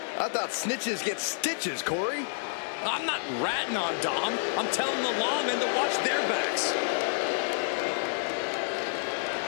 I thought snitches get stitches, Corey. I'm not ratting on Dom. I'm telling the lawmen to watch their backs.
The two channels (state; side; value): silent; right; digital silence